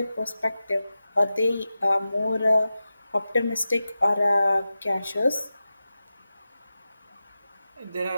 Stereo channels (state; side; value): inverted; both; correlation -0.94